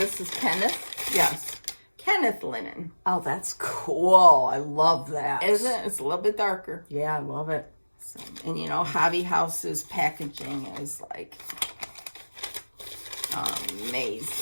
is Kenneth? Yes, Kenneth Linen. Oh, that's cool. I love that. Isn't it? It's a little bit darker. Yeah, I love it. So, and you know, Hobby House's packaging is like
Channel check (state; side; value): inverted; both; correlation -1.00